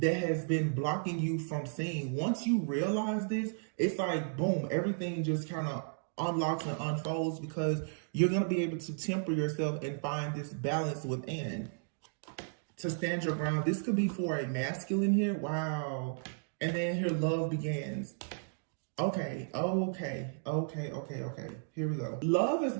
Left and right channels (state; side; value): silent; left; digital silence